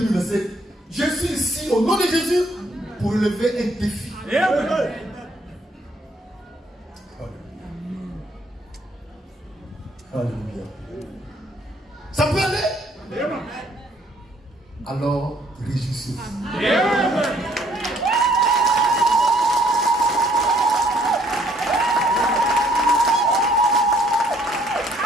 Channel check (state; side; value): normal; both; correlation 0.64